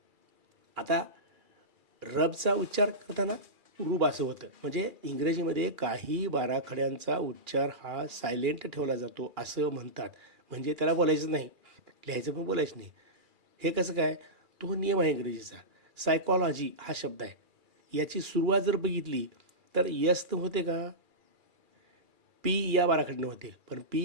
आता रबचा उच्चार करताना रूप असं होतं, म्हणजे इंग्रजीमध्ये काही बाराखड्यांचा उच्चार हा सायलेंट ठेवला जातो असं म्हणतात. म्हणजे त्याला बोलायचं नाही, लिहायचं पण बोलायचं नाही. हे कसं काय? तो नियम आहे इंग्रजीचा. सायकॉलॉजी हा शब्द आहे, याची सुरुवात जर बघितली तर यस तर होते का? पी या बाराखडीने होते, पण पी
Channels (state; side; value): late; left; 2.4 ms